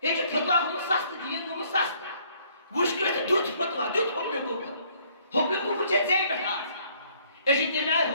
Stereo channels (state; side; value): inverted; both; correlation -0.63